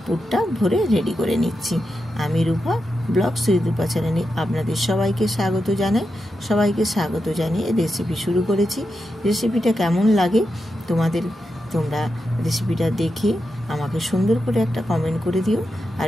পুরটা ভরে রেডি করে নিচ্ছি। আমি রূপা ব্লগ রূপা চ্যানেলে আপনাদের সবাইকে স্বাগত জানাই। সবাইকে স্বাগত জানিয়ে রেসিপি শুরু করেছি। রেসিপিটা কেমন লাগে তোমরা রেসিপিটা দেখে আমাকে সুন্দর করে একটা কমেন্ট করে দিও। আর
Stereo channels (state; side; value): normal; both; correlation 0.88